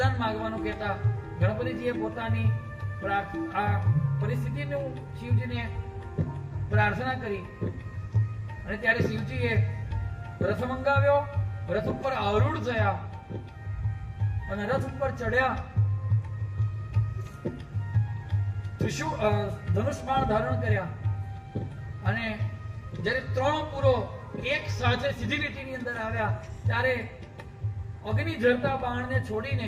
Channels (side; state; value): both; identical; correlation 1.00